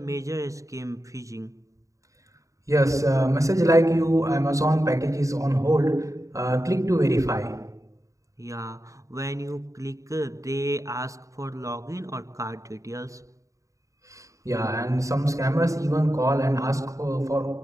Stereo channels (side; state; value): left; late; 0.16 ms